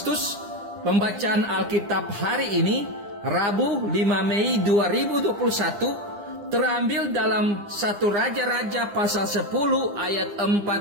pembacaan Alkitab hari ini, Rabu 5 Mei 2021, terambil dalam 1 Raja-Raja pasal 10 ayat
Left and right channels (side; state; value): left; late; 9.9 ms